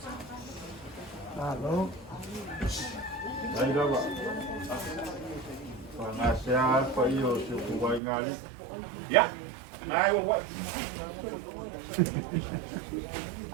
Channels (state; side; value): drops out; left; at 8.0 s